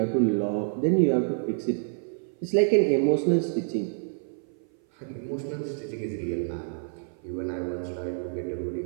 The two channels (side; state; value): left; silent; 56 dB below the other